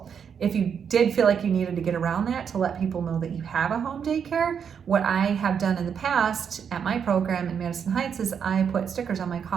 If you did feel like you needed to get around that to let people know that you have a home daycare, what I have done in the past at my program in Madison Heights is I put stickers on my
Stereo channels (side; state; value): left; quieter; 7.3 dB